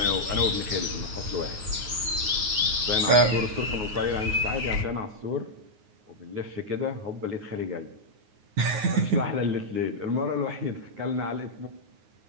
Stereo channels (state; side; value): late; left; 9.5 ms